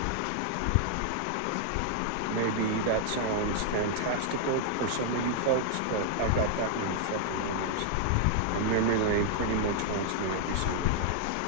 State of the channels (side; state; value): both; different; correlation 0.00